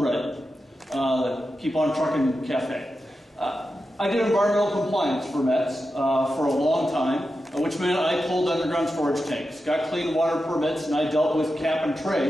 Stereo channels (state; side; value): normal; both; correlation 0.90